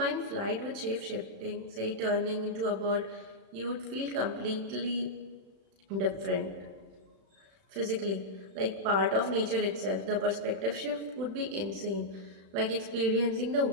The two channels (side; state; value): left; late; 35 ms